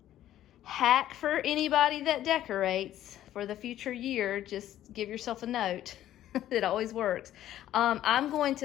hack for anybody that decorates for the future year, just give yourself a note. It always works. I'm going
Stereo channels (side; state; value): right; quieter; 12.6 dB